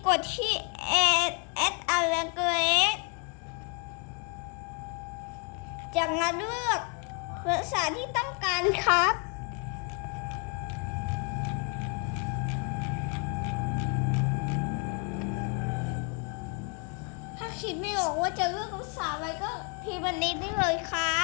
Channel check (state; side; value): quieter; right; 36.4 dB